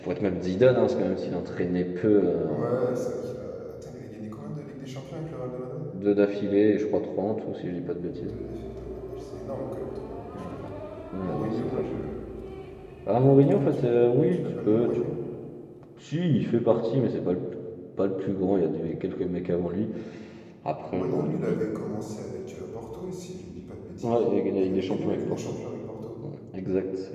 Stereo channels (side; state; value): both; identical; correlation 1.00